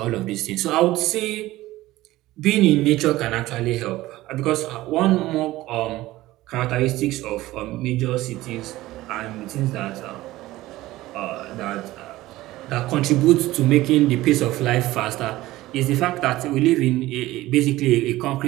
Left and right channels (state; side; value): quieter; left; 17.1 dB